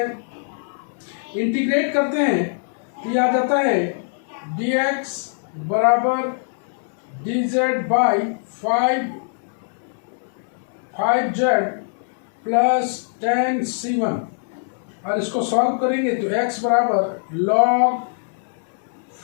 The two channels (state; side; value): silent; right; digital silence